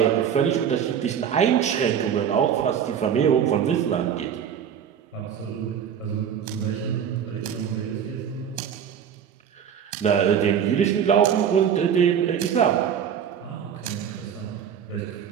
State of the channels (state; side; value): quieter; left; 8.3 dB